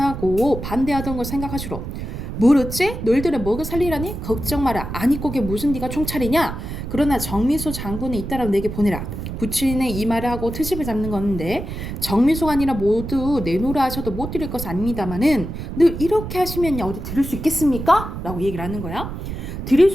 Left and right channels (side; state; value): right; noise; rumble, 7 dB below the sound